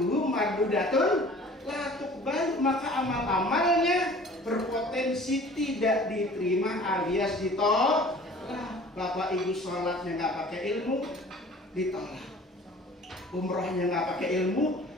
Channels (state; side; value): normal; both; correlation 0.47